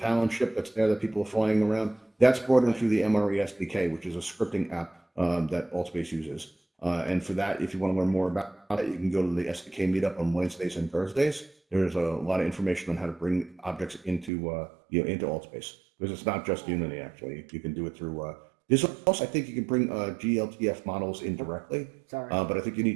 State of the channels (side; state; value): left; drops out; at 14.3 s